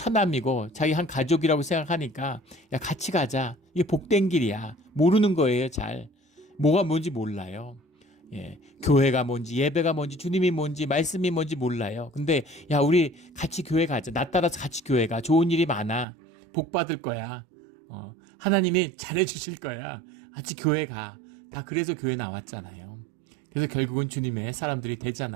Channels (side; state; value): left; drops out; at 16.1 s